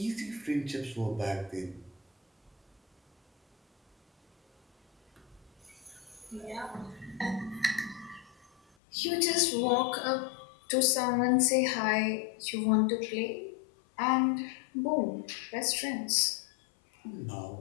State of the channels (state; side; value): drops out; right; at 8.6 s